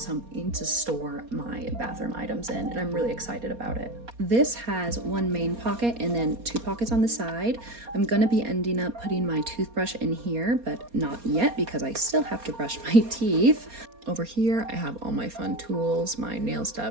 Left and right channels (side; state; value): left; late; 4.2 ms